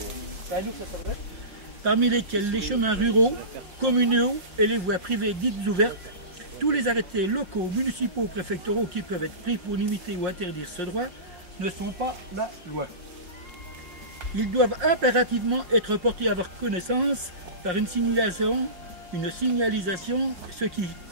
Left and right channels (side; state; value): left; late; 5.5 ms